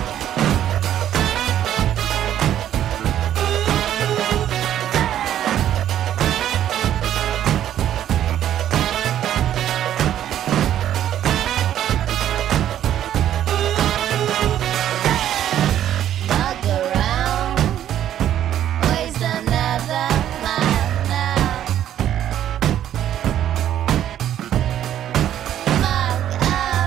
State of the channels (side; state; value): left; quieter; 11.2 dB